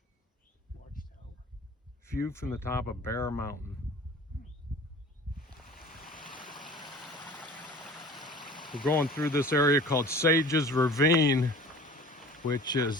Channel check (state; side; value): normal; both; correlation 0.43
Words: View from the top of Bear Mountain. We're going through this area called Sage's Ravine, which